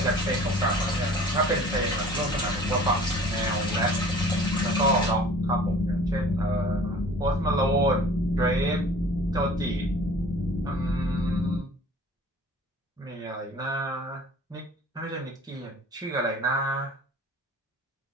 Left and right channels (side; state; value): both; normal; correlation 0.46